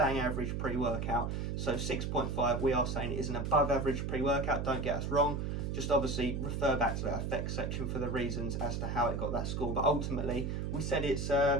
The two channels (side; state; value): right; noise; hum, 2 dB below the sound